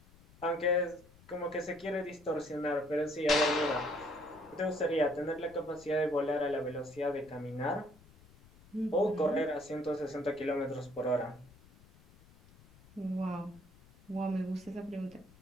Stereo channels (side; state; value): left; noise; rumble, 25 dB below the sound